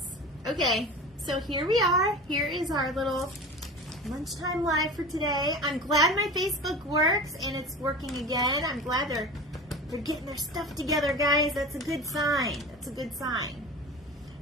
Okay, so here we are. Here is our little lunchtime live for today. I'm glad my Facebook works and it's working again. I'm glad they're getting their stuff together, guys. That's a good sign. That's a good sign.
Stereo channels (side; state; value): both; normal; correlation 0.33